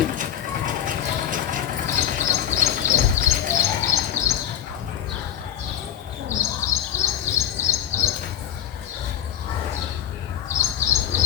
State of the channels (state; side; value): quieter; right; 10.4 dB